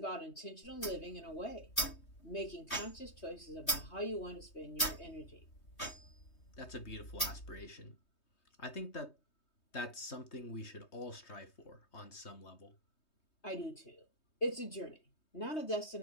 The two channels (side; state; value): right; late; 3.2 ms